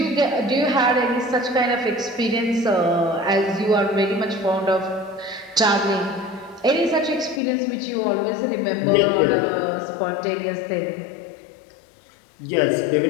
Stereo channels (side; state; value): right; drops out; at 7.4 s